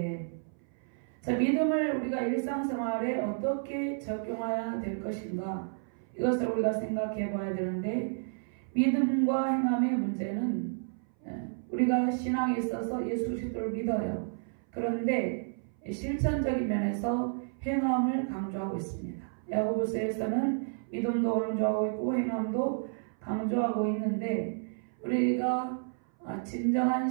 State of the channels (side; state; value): left; silent; 57 dB below the other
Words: 자, 믿음을 우리가 일상생활에 어떻게 적용해야 될 것인가, 이것을 우리가 생각해 봐야 되는데, 믿음과 행함의 문제는 우리가 신앙에 있어서 예수 그리스도를 믿어요. 그런데 실천적인 면에서 행함을 강조하고 있습니다. 야고보서에서는 믿음도 강조하고 있고 행함도 강조하고 있는데, 우리가 진정한